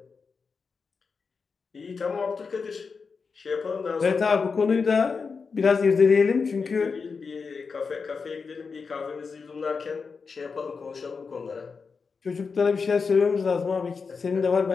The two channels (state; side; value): quieter; right; 5.1 dB